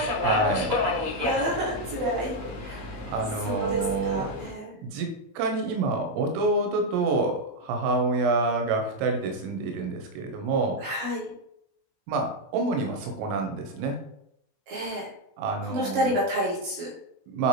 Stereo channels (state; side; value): late; left; 18 ms